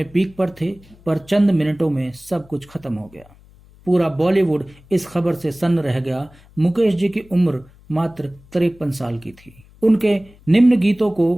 पीक पर थे, पर चंद मिनटों में सब कुछ खत्म हो गया। पूरा बॉलीवुड इस खबर से सन्न रह गया। मुकेश जी की उम्र मात्र 53 साल की थी। उनके निम्न गीतों को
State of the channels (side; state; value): left; noise; hum, 26 dB below the sound